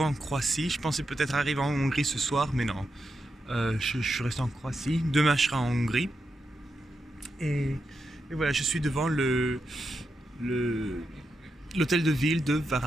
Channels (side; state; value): both; normal; correlation 0.86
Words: en Croatie. Je pensais peut-être arriver en Hongrie ce soir, mais non. Je suis resté en Croatie. Demain je serai en Hongrie. Et voilà, je suis devant l'hôtel de ville de